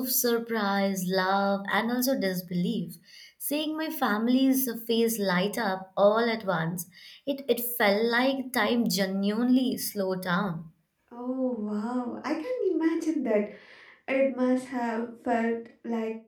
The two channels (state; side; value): identical; both; correlation 1.00